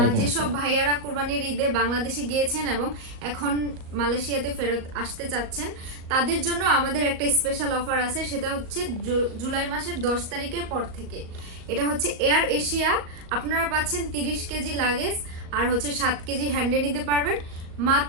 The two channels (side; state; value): left; late; 38 ms